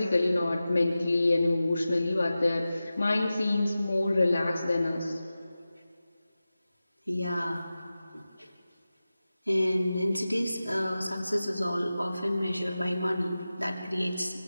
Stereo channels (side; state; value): both; inverted; correlation -0.95